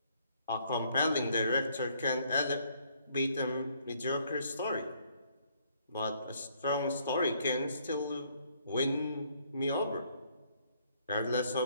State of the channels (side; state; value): both; inverted; correlation -0.66